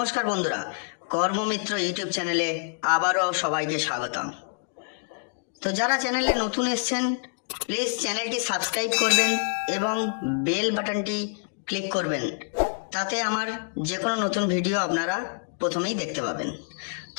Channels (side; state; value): right; silent; digital silence